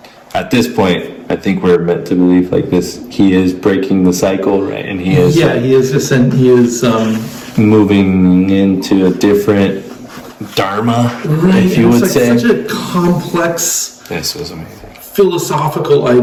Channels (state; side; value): identical; both; correlation 1.00